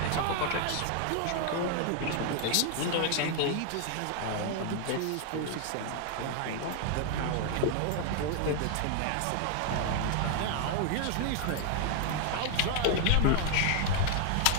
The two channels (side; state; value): both; different; correlation 0.00